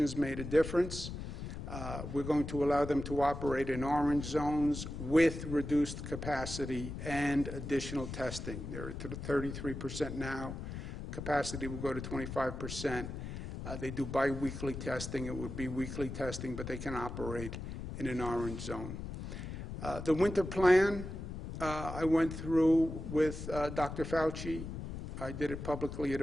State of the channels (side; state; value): left; noise; rumble, 7 dB below the sound